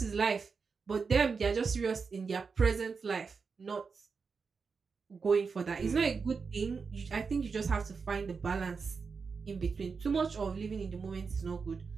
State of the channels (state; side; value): quieter; left; 5.1 dB